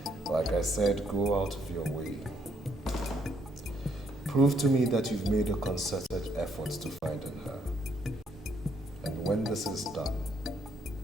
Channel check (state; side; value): normal; both; correlation 0.71